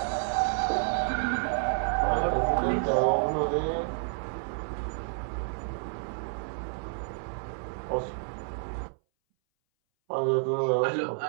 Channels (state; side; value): silent; left; 58 dB below the other